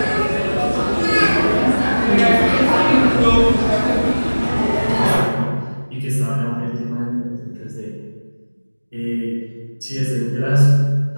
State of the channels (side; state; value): both; inverted; correlation -1.00